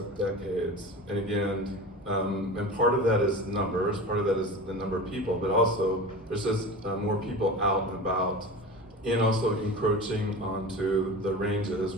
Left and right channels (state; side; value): normal; both; correlation 0.32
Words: decades. And again, and part of that is numbers, part of that is the number of people, but also there's just more people out and about, and also encroaching onto the ranges